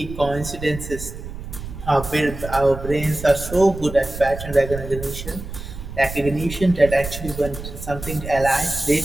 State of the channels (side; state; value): right; noise; rumble, 10 dB below the sound